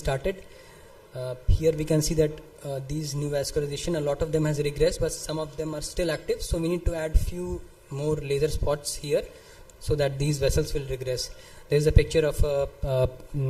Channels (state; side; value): identical; both; correlation 1.00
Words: Here we can see that these neovascularization, a lot of them has regressed, but some of them are still active, so we need to add few more laser spots here so that these vessels will regress. There is a picture of a